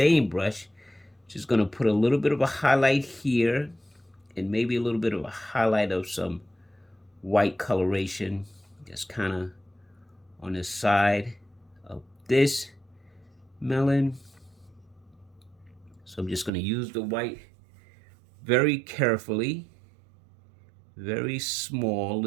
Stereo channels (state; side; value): drops out; left; at 16.5 s